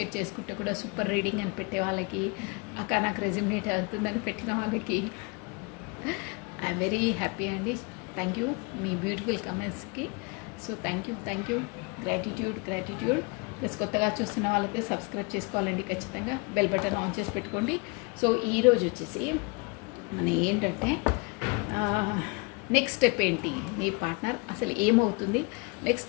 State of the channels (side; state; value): right; quieter; 29.8 dB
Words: చేసుకుంటే కూడా సూపర్ రీడింగ్ అని పెట్టే వాళ్ళకి, అక్క నాకు రెజ్యూమినేట్ అవుతుందని పెట్టిన వాళ్ళకి ఐఎమ్ వెరీ హ్యాపీ అండి. థ్యాంక్ యూ మీ బ్యూటిఫుల్ కామెంట్స్కి. So thank you gratitude. Plus కొత్తగా చూస్తున్న వాళ్ళైతే సబ్స్క్రైబ్ చేసుకోవాలండి ఖచ్చితంగా. బెల్ బటన్ ఆన్ చేసి పెట్టుకోండి. సో ఈరోజు వచ్చేసి మన ఏంటంటే నెక్స్ట్ స్టెప్ ఏంటి, మీ పార్ట్నర్ అసలు ఏమవుతుంది, నెక్స్ట్